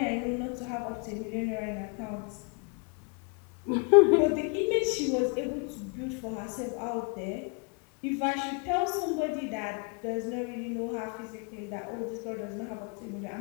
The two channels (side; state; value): right; quieter; 35.7 dB